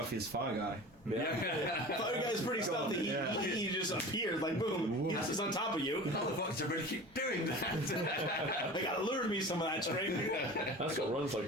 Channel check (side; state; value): both; normal; correlation 0.36